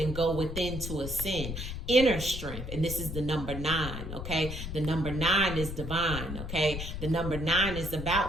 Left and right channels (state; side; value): noise; left; rumble, 6 dB below the sound